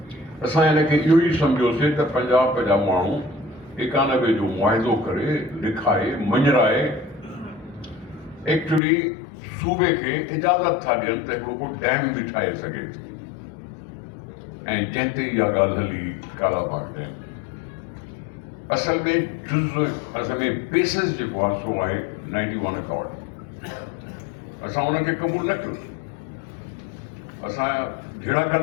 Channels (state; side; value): drops out; right; at 8.8 s